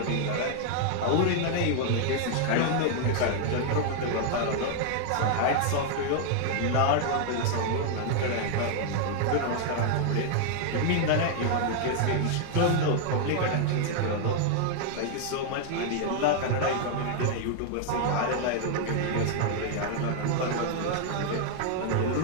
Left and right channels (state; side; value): different; both; correlation 0.00